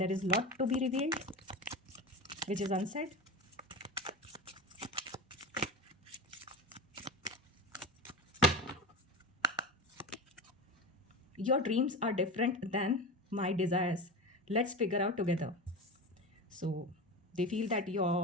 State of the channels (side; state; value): both; normal; correlation 0.27